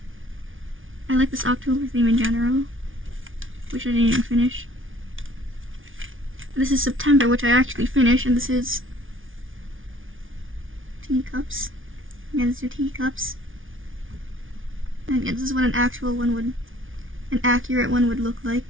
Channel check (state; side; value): late; left; 0.57 ms